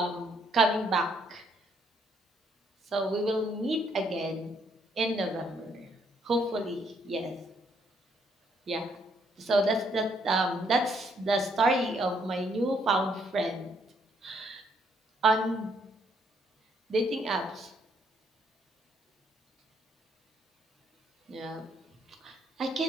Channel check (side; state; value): both; normal; correlation 0.70